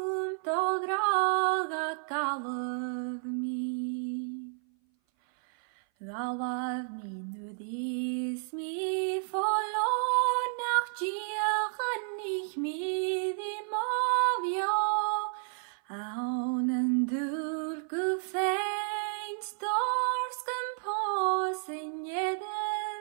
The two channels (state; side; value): silent; left; 57 dB below the other